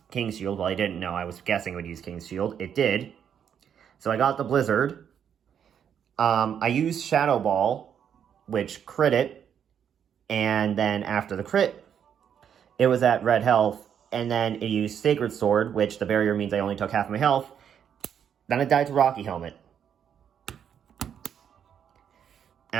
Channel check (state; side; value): quieter; left; 8.4 dB